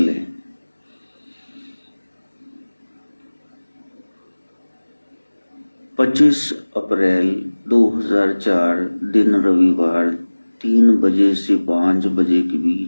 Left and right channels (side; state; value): both; inverted; correlation -1.00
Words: पच्चीस अप्रैल 2004 दिन रविवार 3 बजे से 5 बजे के